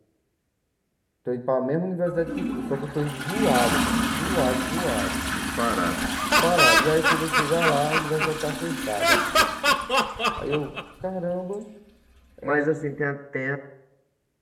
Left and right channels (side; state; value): both; identical; correlation 1.00